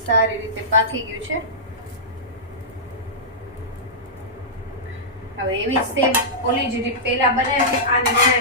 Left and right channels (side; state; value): both; normal; correlation -0.15